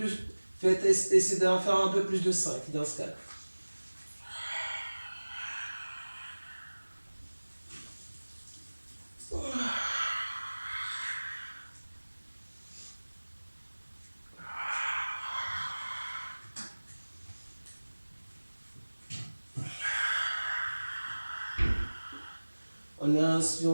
Faites essayer d'en faire un peu plus de 5 dans ce cas. On inspire,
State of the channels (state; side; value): inverted; both; correlation -1.00